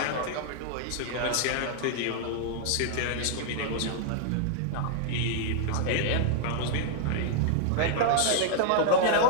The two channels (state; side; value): different; both; correlation -0.01